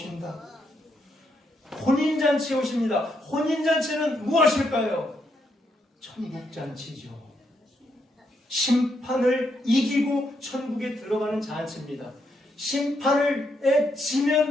혼인잔치에 오십니다. 혼인잔치는 무엇일까요? 천국잔치죠. 심판을 이기고 천국에 들어가는 잔치입니다. 심판을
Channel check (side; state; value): both; normal; correlation 0.78